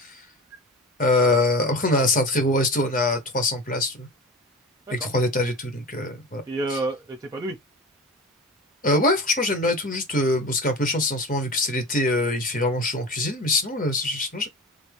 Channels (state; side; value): normal; both; correlation 0.31